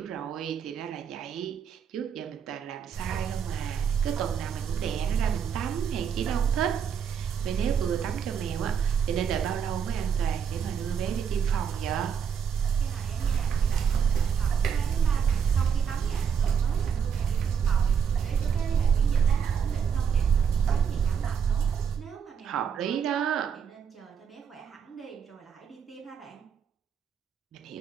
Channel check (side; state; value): left; quieter; 7.3 dB